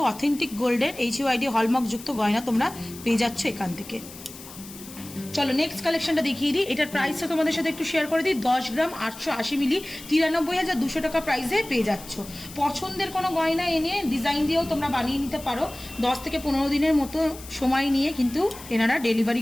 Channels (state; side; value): noise; left; hiss, 16 dB below the sound